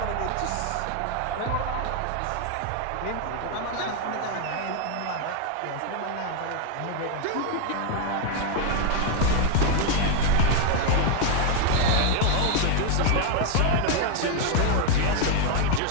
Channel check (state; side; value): different; both; correlation 0.00